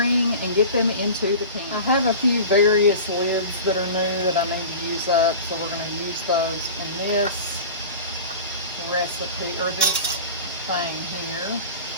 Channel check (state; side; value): inverted; both; correlation -0.35